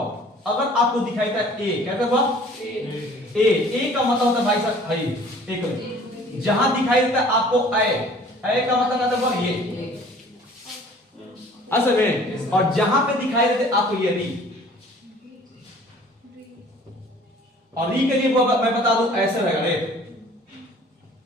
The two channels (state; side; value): normal; both; correlation 0.51